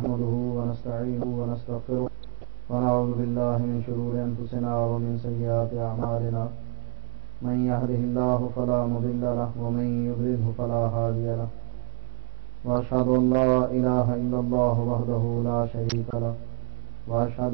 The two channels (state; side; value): silent; left; digital silence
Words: ونستعينه ونستغفره ونعوذ بالله من شرور أنفسنا ومن سيئات أعمالنا من يهده الله فلا مضل له ومن يضلله فلا هادي له وأشهد أن لا إله إلا الله وحده لا شريك له وأشهد